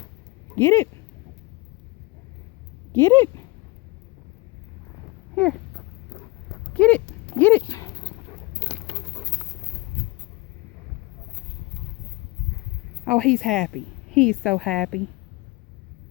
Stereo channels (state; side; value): quieter; right; 22.7 dB